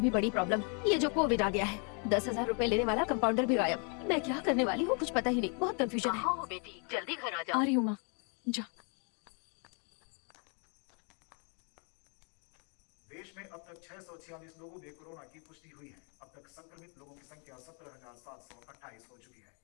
भी बड़ी प्रॉब्लम ये जो कोविड आ गया है। 10,000 रुपए लेने वाला कंपाउंडर भी गायब। मैं क्या करने वाली हूँ कुछ पता ही नहीं, बहुत कंफ्यूजन है। हो बेटी, जल्दी घर आ आ रही हूँ माँ, जा। देश में अब तक 646 लोगों में कोरोना की पुष्टि हुई है। अब तक संक्रमित लोगों की संख्या 17,728 हो चुकी है।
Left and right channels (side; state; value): right; quieter; 38.2 dB